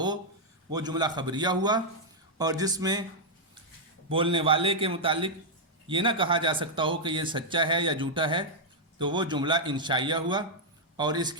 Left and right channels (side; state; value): both; normal; correlation -0.04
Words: वो जुमला खबरिया हुआ। और जिसमें बोलने वाले के मुतालिक ये ना कहा जा सकता हो कि ये सच्चा है या झूठा है, तो वो जुमला इंशाइया हुआ। और